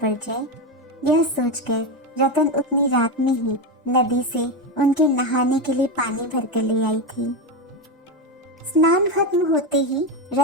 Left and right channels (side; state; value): both; normal; correlation 0.13